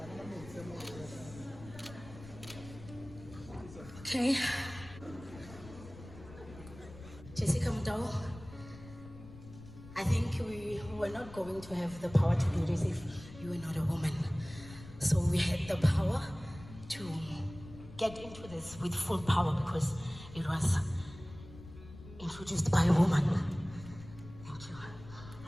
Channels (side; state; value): left; noise; rumble, 16 dB below the sound